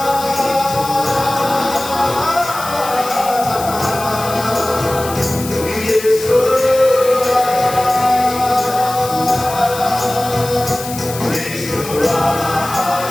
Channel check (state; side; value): noise; left; hiss, 11 dB below the sound